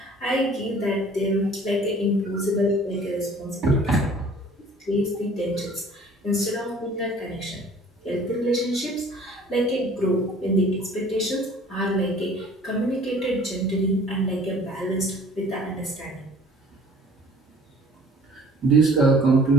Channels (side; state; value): both; normal; correlation 0.50